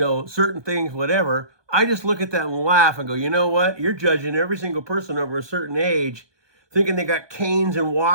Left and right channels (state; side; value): late; left; 1.2 ms